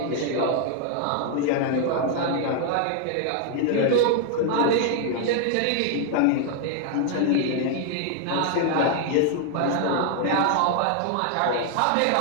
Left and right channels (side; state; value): both; different; correlation 0.00